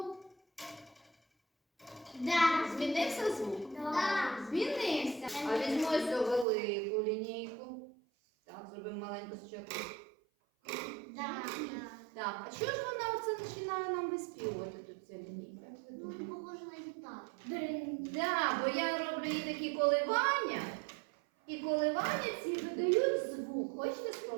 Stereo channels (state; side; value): drops out; left; at 6.5 s